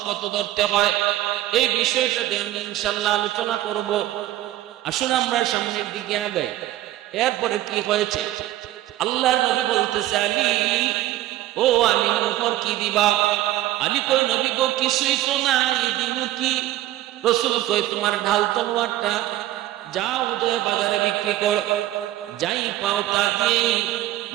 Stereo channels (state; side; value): quieter; left; 14.8 dB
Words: কত ধরতে হয় এই বিষয়টাতে আমি ইনশাআল্লাহ আলোচনা করব। আসুন আমরা সামনের দিকে আগাই। এরপরে কি হয়েছে, আল্লাহর নবী বলতেছে আলী, ও আলী মোহর কি দিবা? আলী কই নবী গো কিছুই তো নাই, দিন কি? রাসূল কই তোমার ঢাল তলোয়ারটা যাও উদয় বাজারে বিক্রি কর, যাই পাও তা দিয়ে